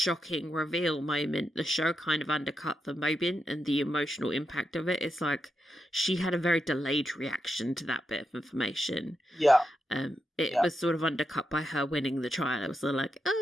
reveal moment, the show kind of undercut the moment and the emotional impact of it. It's like she had a very delayed reaction to that bit of information. Yeah. It was sort of undercut by her winning the trial. It was sort of like,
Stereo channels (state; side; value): normal; both; correlation 0.86